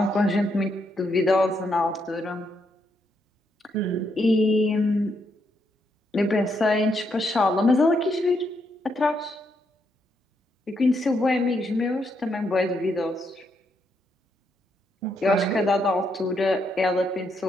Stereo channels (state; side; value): normal; both; correlation 0.78